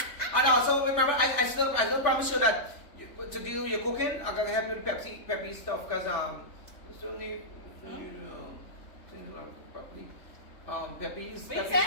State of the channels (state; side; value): late; right; 3.5 ms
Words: And also remember, I still promise you that to deal with your cooking, I'm gonna help you with Peppy stuff because you still need things like properly.